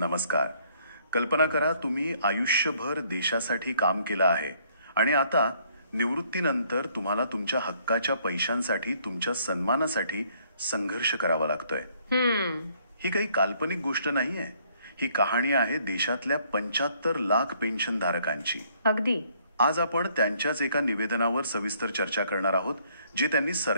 नमस्कार. कल्पना करा तुम्ही आयुष्यभर देशासाठी काम केलं आहे आणि आता निवृत्तीनंतर तुम्हाला तुमच्या हक्काच्या पैशांसाठी तुमच्या सन्मानासाठी संघर्ष करावा लागतोय. ही काही काल्पनिक गोष्ट नाहीये. ही कहाणी आहे देशातल्या 75 लाख पेन्शन धारकांची. अगदी. आज आपण त्यांच्याच एका निवेदनावर सविस्तर चर्चा करणार आहोत जे त्यांनी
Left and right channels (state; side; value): inverted; both; correlation -0.65